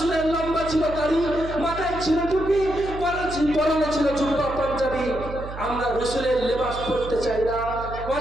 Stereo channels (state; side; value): noise; right; hum, 10 dB below the sound